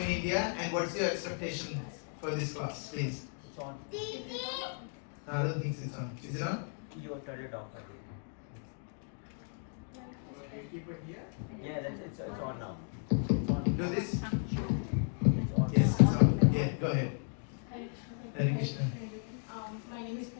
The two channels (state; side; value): silent; right; 55 dB below the other